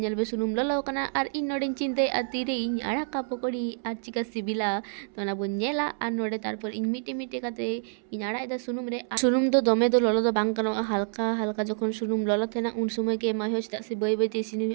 बे सुनुम ललो कना और इन नोडे चिंते आती रे इन आड़ा का पकोड़ी आर चिका सिबिला तो ना बन नेला और नोडे तारपर इन मिटे मिटे कते इन आड़ा इदा सुनुम रे सुनुम दो दमे दो ललो दो बांग कनो हल्का हल्का जखन सुनुम ललो थेना उन समय के मा हो चदा से बय बय ते सिनि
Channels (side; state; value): left; silent; 60 dB below the other